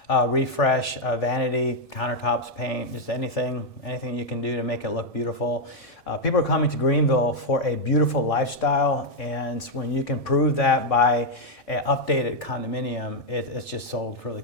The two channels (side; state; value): right; late; 1.6 ms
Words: Refresh, vanity, countertops, paint, just anything you can do to make it look beautiful. People are coming to Greenville for a beautiful lifestyle, and when you can prove that by an updated condominium, it's just sold really